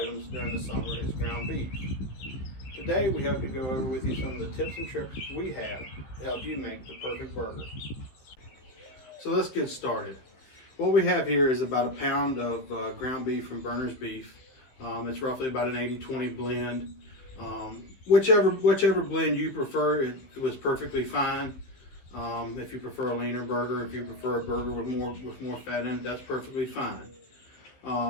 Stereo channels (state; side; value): late; right; 15 ms